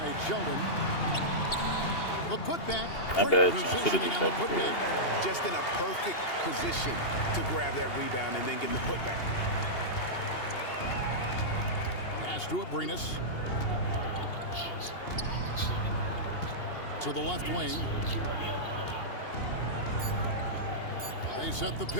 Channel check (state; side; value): late; right; 2.8 ms